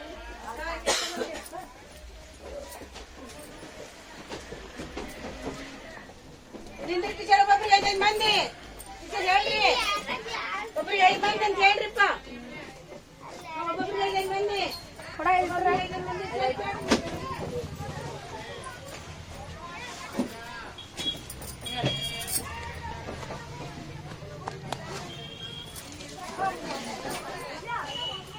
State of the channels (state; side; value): identical; both; correlation 1.00